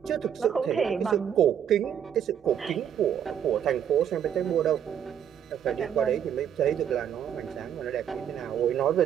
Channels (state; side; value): quieter; left; 9.1 dB